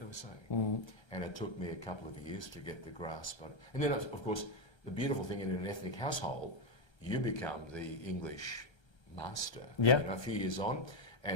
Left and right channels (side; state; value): right; late; 1.3 ms